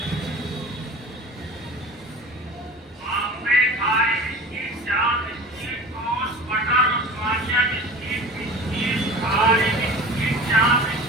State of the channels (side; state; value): both; normal; correlation 0.38